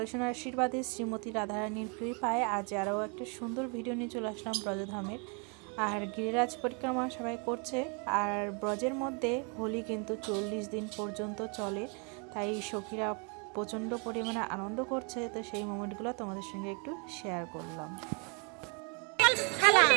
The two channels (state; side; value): quieter; left; 35.1 dB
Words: সোনার আশীর্বাদে শ্রীমতী রাধারানীর কৃপায় আজ আরও একটা সুন্দর ভিডিও নিয়ে চলে আসলাম ব্রজধামের। আর গিরিরাজ পরিক্রমা সবাই করছে। আর ব্রজের মধ্যে হোলি কিন্তু 40 দিন পর্যন্ত চলে, তাই সখীরা প্রচণ্ড পরিমাণে আনন্দ করছে। তো সেই মোমেন্টগুলো তোমাদের সঙ্গে একটু শেয়ার করলাম।